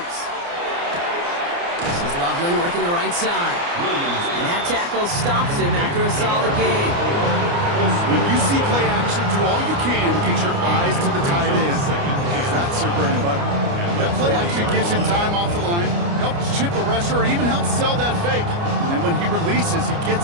This is Loveland working the right side. And that tackle stops him after a solid game. When you see play action, do all you can to get your eyes to the tight end, because that's their bread and butter. That play action gives him time off the line, helps chip a rusher, or even helps sell that fake. And then when he releases, he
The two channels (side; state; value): left; late; 29 ms